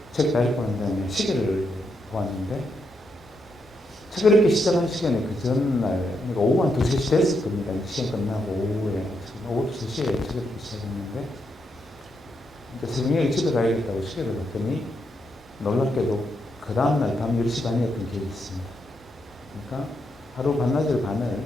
책 다 읽고 난 다음에 시계를 보았는데 책을 읽기 시작한 시간에 그 전날, 그러니까 오후 한 2, 3시 됐을 겁니다. 시간 끝나고 오후 2, 3시에 책을 읽기 시작했는데 새벽에 집에 가야겠다고 시계를 봤더니 놀랍게도 그 다음날 밤 10시 반이었던 기억이 있습니다. 그러니까 하루 반나절 반을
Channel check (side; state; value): both; normal; correlation 0.81